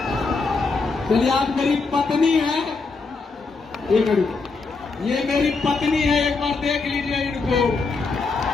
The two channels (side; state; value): right; quieter; 4.2 dB